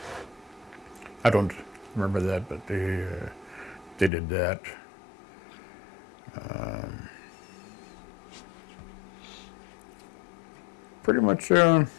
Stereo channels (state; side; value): drops out; right; at 4.1 s